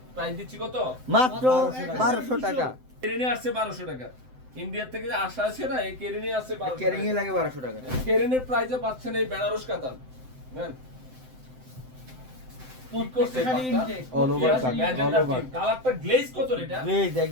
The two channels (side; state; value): left; late; 7.8 ms